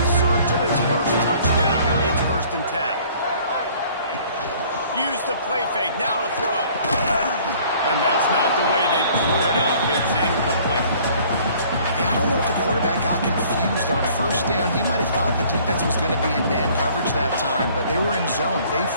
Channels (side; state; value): both; inverted; correlation -0.55